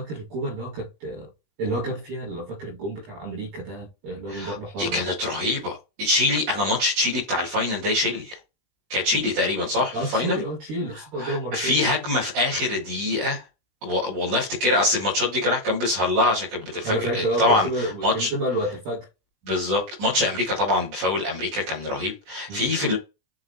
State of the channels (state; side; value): late; left; 20 ms